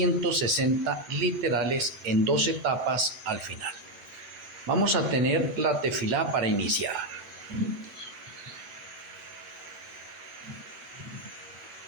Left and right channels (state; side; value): late; left; 9.1 ms